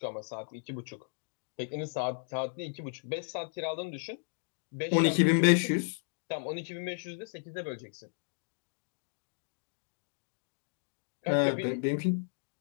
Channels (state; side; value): silent; right; digital silence